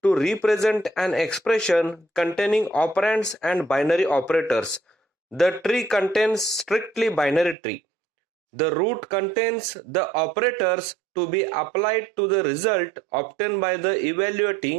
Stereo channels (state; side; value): drops out; left; at 7.6 s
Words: represent an expression containing operands and binary operators. The tree contains strictly binary tree. The root contains the operators to be applied to the result obtained by the